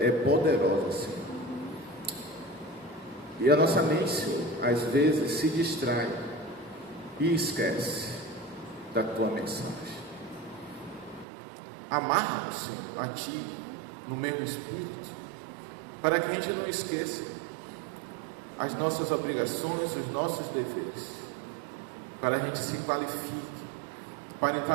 poderosa, Senhor. E a nossa mente, Senhor, às vezes se distrai e esquece da tua mensagem. Amarra-nos, Senhor, a Ti, no meu espírito, para que a gente não esqueça as nossas obrigações, os nossos deveres, para a gente se qualifique, para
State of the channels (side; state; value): left; drops out; at 11.2 s